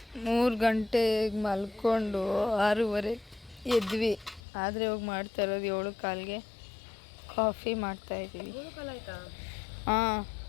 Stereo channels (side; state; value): right; drops out; at 4.4 s